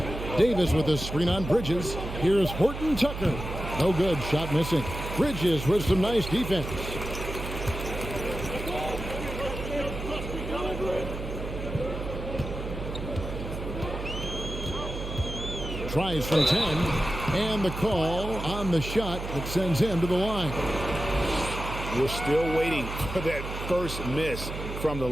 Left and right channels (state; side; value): noise; right; hum, 7 dB below the sound